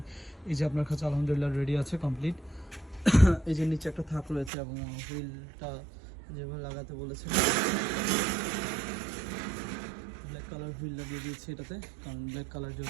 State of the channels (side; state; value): left; drops out; at 4.5 s